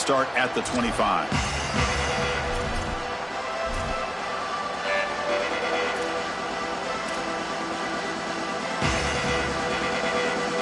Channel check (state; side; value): identical; both; correlation 1.00